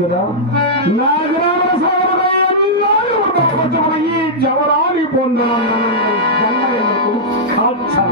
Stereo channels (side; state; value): both; normal; correlation -0.10